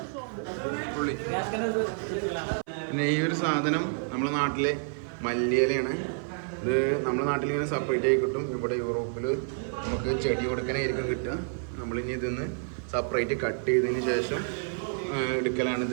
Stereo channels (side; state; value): left; silent; 56 dB below the other